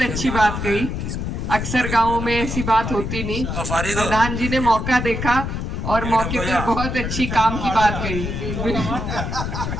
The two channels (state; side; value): noise; left; rumble, 3 dB below the sound